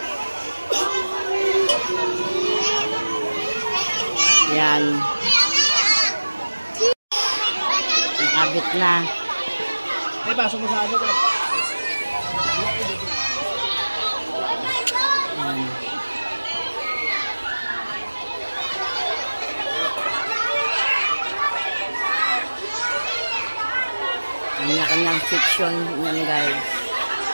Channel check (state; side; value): inverted; both; correlation -1.00